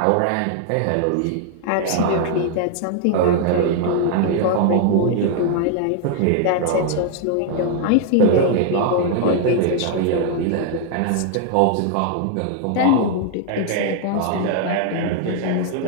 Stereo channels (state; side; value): different; both; correlation 0.00